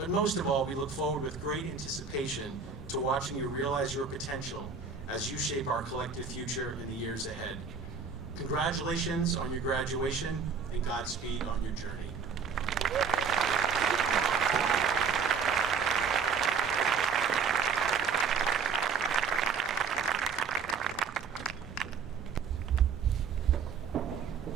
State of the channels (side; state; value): left; quieter; 5.8 dB